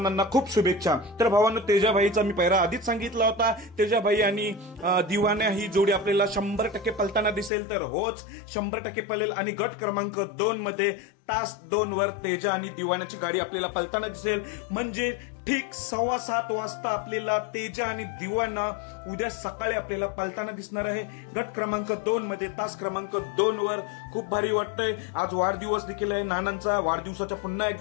खूप शुभेच्छा. तर भावांनो, तेजाभाईचा मी पैरा आधीच सांगितला होता. तेजाभाई आणि दिवाण्या ही जोडी आपल्याला 100% पलताना दिसेल. तर होच 100% पळेल आणि गट क्रमांक 2 मध्ये तास 2 वर तेजा आणि दिवाण्याची गाडी आपल्याला पलताना दिसेल. म्हणजे ठीक 7:15 वाजता आपल्याला तेजा आणि दिवाना उद्या सकाळी आपल्याला पलताना दिसणार आहे गट क्रमांक 2 मध्ये तास क्रमांक 2 वर. खूप भारी वाटतंय. आज वाढदिवस देखील आहे नानांचा. वाढदिवसाच्या पुन्हा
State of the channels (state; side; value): drops out; right; at 7.5 s